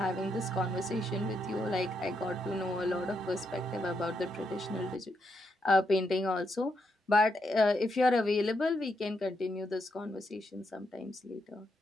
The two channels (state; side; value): normal; both; correlation 0.80